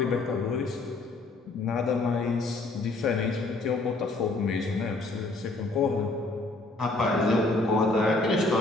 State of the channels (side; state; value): right; quieter; 3.2 dB